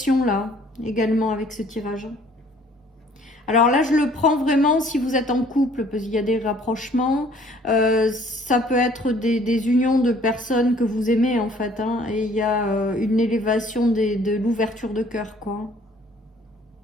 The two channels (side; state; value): both; normal; correlation 0.57